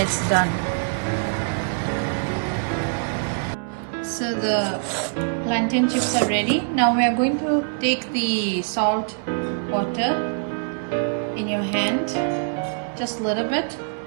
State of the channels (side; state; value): left; silent; 63 dB below the other